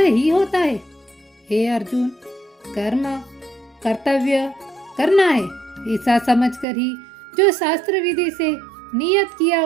होता है। हे अर्जुन, कर्म कर्तव्य करना है ऐसा समझकर ही जो शास्त्र विधि से नियत किया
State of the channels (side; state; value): left; drops out; at 6.7 s